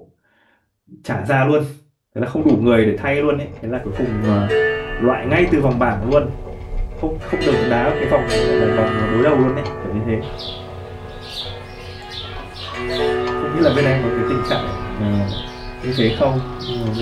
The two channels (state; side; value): identical; both; correlation 1.00